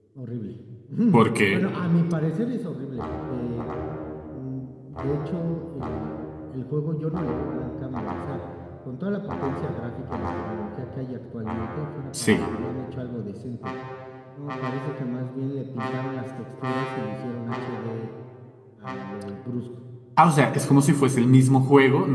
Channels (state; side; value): identical; both; correlation 1.00